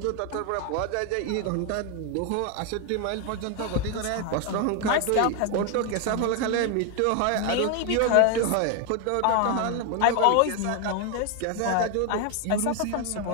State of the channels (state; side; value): different; both; correlation 0.01